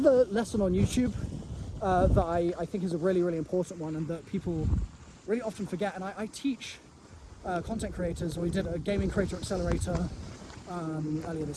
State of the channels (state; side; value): identical; both; correlation 1.00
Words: lesson on YouTube that I think is a really, really important one, and that people really often forget, and I teach content creators. We did a gaming creator accelerator earlier